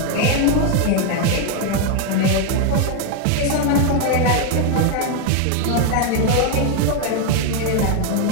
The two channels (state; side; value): different; both; correlation 0.01